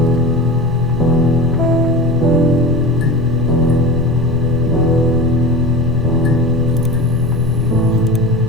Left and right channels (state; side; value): normal; both; correlation 0.30